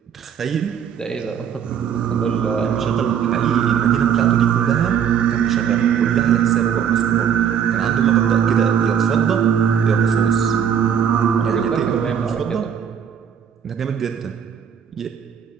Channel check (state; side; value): quieter; left; 8.1 dB